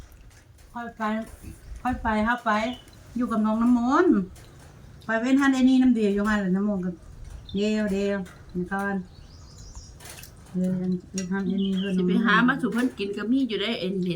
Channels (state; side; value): identical; both; correlation 1.00